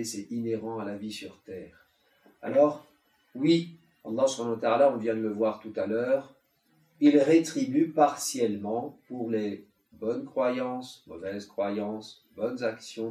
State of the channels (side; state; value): both; identical; correlation 1.00